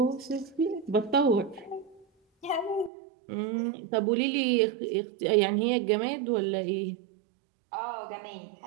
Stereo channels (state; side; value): drops out; left; at 2.9 s